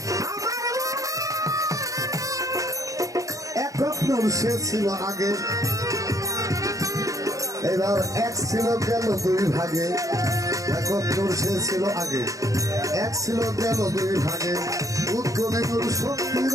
একক নূর সে ছিল আগে, এবার এক ছিল গেল দুই ভাগে। একক নূর সে ছিল আগে, এক ছিল গেল দুই ভাগে। উদ্গমে নূর শক্তির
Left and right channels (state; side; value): late; left; 0.16 ms